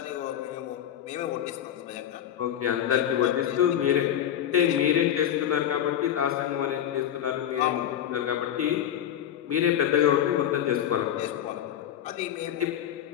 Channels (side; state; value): right; quieter; 10.4 dB